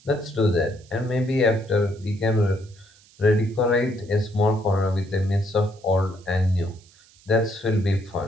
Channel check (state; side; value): noise; right; hiss, 28 dB below the sound